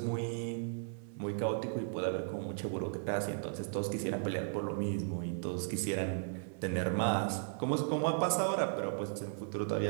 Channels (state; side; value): silent; left; 54 dB below the other